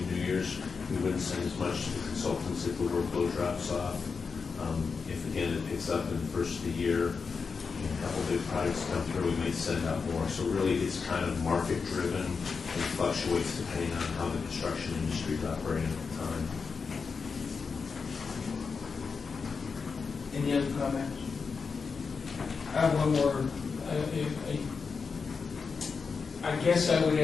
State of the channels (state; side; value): quieter; right; 5.2 dB